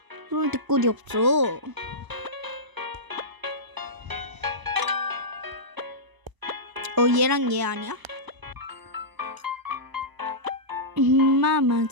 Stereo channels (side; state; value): left; late; 1.0 ms